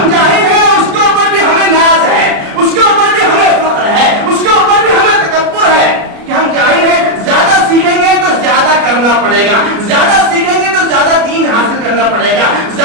جاہل ہیں اس کے اوپر بھی ہمیں ناز ہے, اس کے اوپر بھی ہمیں فخر ہے, اس کے اوپر بھی ہمیں تکبر ہے کہ ہم جاہل ہیں. زیادہ سیکھیں گے تو زیادہ کرنا پڑے گا, زیادہ سیکھیں گے تو زیادہ دین حاصل کرنا پڑے گا,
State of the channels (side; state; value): left; late; 33 ms